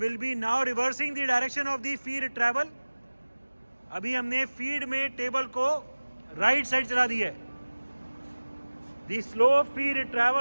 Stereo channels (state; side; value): inverted; both; correlation -1.00